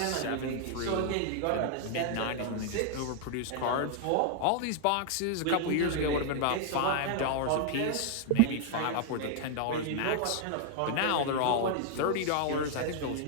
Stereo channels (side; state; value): both; different; correlation 0.00